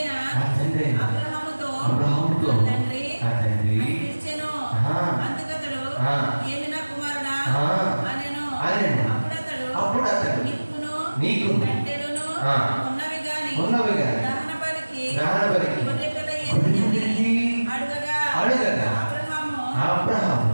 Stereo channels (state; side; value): inverted; both; correlation -1.00